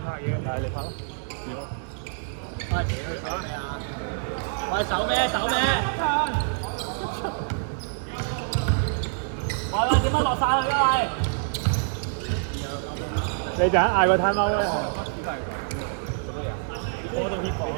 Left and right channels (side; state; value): left; silent; 61 dB below the other